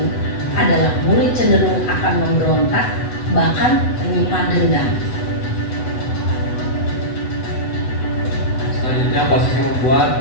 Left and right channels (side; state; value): right; late; 8.1 ms